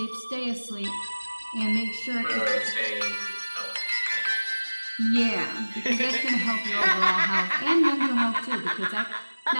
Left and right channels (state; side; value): inverted; both; correlation -1.00